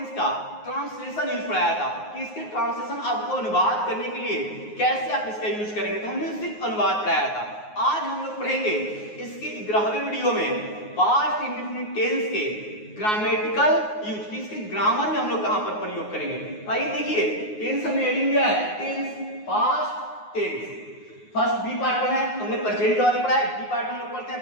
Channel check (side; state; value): right; late; 9.5 ms